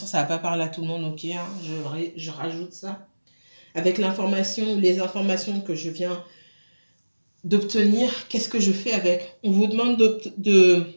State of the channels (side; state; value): both; inverted; correlation -1.00